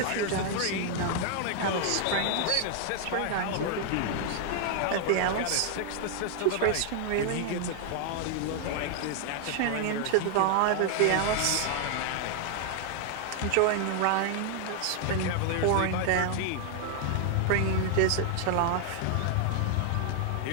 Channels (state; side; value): different; both; correlation 0.00